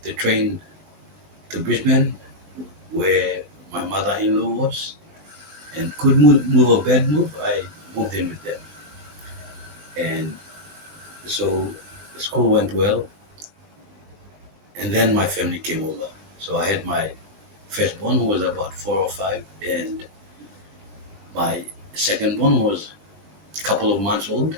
the train to Brisbane, where my mother-in-law was, and could move a bad move. I moved in with them, and so the school went well. And then my family came over. So I had my firstborn, who was about 4 or 5, and my secondborn was a couple of months old,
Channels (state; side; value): late; left; 19 ms